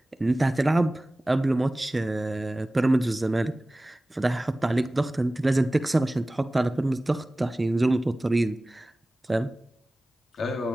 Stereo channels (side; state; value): both; normal; correlation 0.98